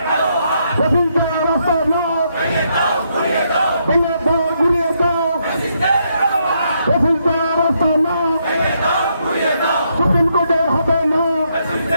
ফসিলদার রাস্তা না ভেঙে দাও ঘুরিয়ে দাও ফসিলদার রাস্তা না সুপ্রিম কোর্টে হবে না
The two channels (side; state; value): both; inverted; correlation -0.77